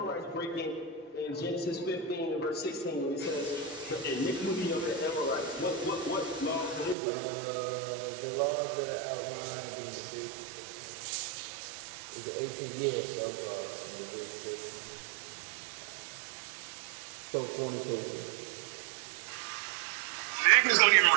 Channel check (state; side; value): drops out; left; at 7.0 s